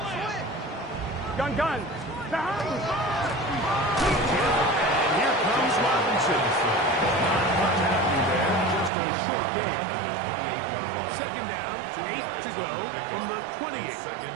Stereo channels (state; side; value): drops out; left; at 8.9 s